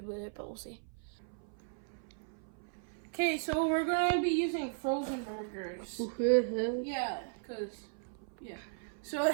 with it, but we'll see. Okay, so we're going to be using frozen burgers. Yeah, because, yeah. So,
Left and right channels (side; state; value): left; silent; 54 dB below the other